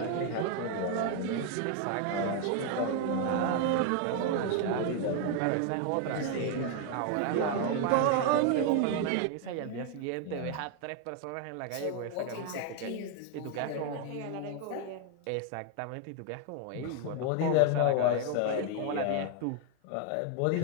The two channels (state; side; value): different; both; correlation 0.01